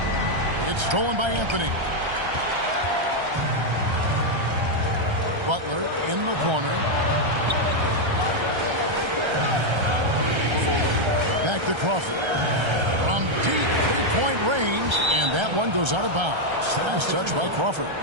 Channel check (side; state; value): left; late; 1.3 ms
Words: It's stolen by Anthony. Butler in the corner. Back to Crawford. From deep three-point range, and that one goes out of bounds. Last touch by Crawford.